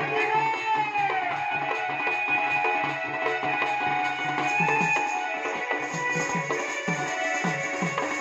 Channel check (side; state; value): both; identical; correlation 1.00